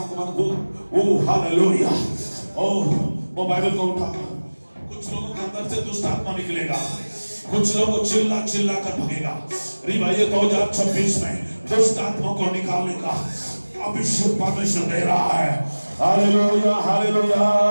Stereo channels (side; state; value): both; inverted; correlation -1.00